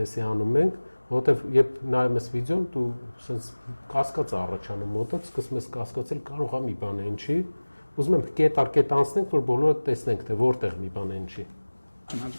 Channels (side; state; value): both; inverted; correlation -1.00